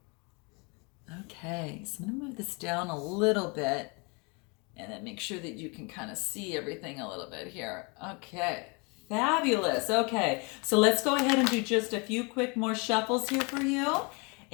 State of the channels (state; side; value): quieter; right; 30.7 dB